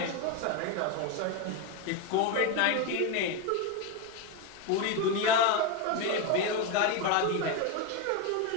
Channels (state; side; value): different; both; correlation 0.03